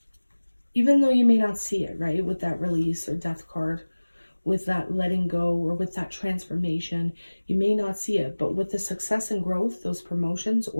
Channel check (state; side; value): inverted; both; correlation -1.00